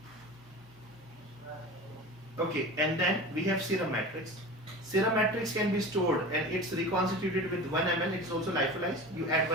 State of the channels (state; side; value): normal; both; correlation 0.33